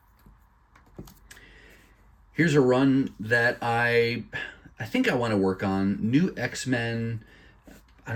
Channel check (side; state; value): both; identical; correlation 1.00